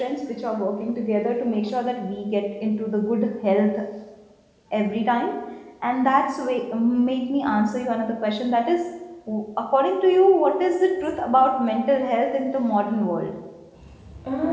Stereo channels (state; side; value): identical; both; correlation 1.00